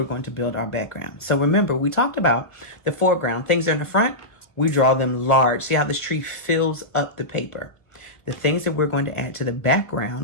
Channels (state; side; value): late; right; 1.1 ms